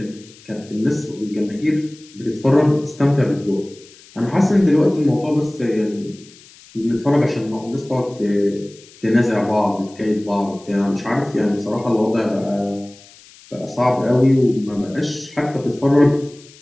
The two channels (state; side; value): noise; left; hiss, 24 dB below the sound